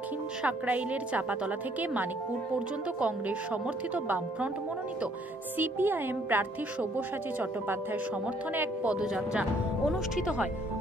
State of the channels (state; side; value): normal; both; correlation 0.64